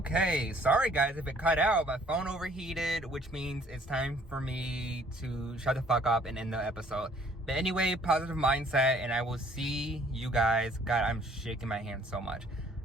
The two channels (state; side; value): normal; both; correlation 0.59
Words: sorry guys if it cut out. My phone overheated, which means it's time for me to shut the fuck up and end the episode. But anyway, positive mindset, and I will see you guys. God, I'm shaking my hand so much.